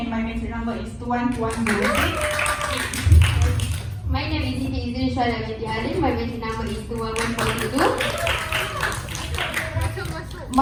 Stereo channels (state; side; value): identical; both; correlation 1.00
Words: my matric number is 21206. My name is Siti Izrin Syara binti Halim. My matric number is 21422.